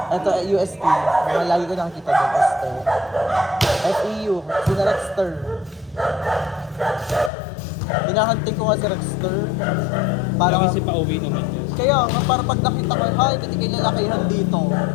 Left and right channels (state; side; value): drops out; right; at 7.3 s